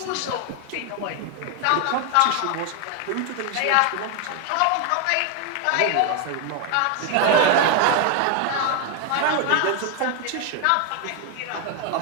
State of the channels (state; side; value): different; both; correlation 0.01